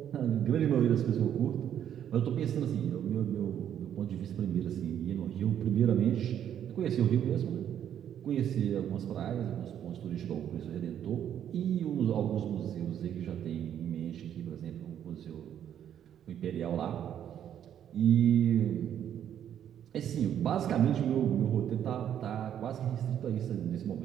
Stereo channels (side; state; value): left; quieter; 9.8 dB